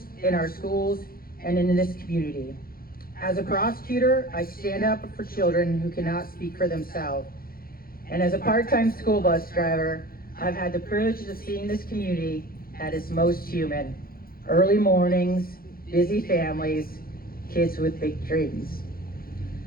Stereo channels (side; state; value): right; late; 0.43 ms